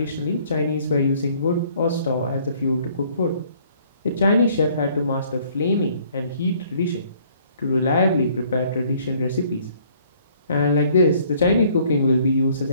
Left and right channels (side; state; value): both; inverted; correlation -0.61